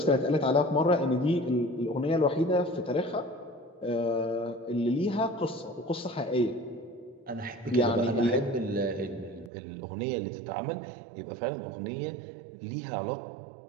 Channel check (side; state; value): left; drops out; at 9.5 s